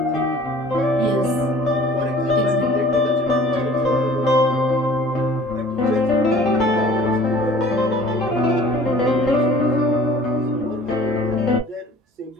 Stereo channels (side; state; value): both; normal; correlation 0.49